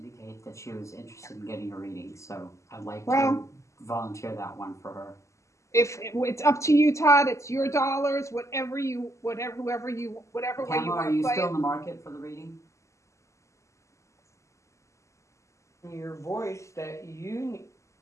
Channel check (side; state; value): right; late; 0.14 ms